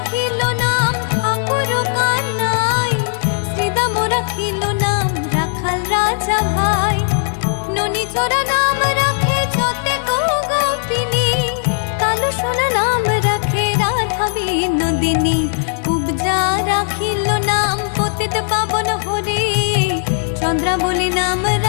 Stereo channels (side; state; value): right; silent; digital silence